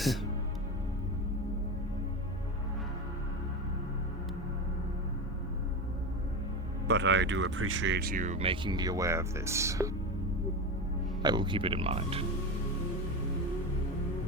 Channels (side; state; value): both; normal; correlation 0.20